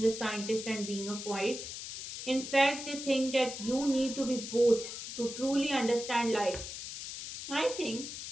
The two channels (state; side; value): noise; left; hiss, 8 dB below the sound